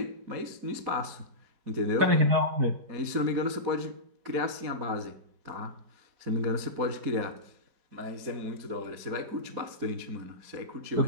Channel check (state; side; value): late; left; 4.2 ms